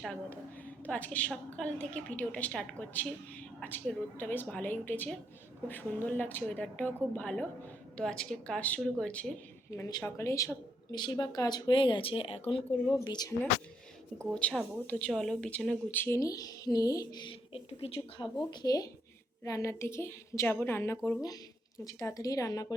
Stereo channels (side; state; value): both; normal; correlation 0.75